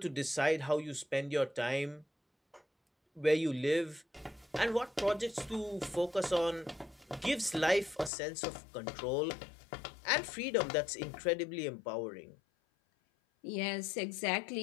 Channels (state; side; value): drops out; right; at 8.1 s